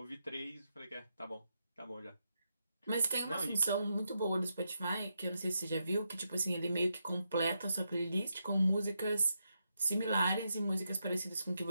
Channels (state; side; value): inverted; both; correlation -0.83